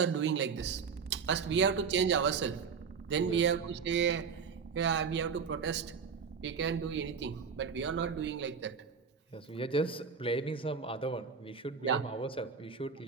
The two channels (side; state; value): left; quieter; 6.0 dB